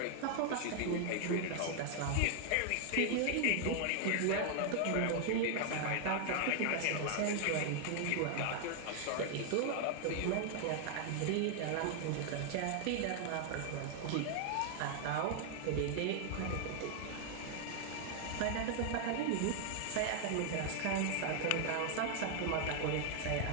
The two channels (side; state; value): both; different; correlation 0.00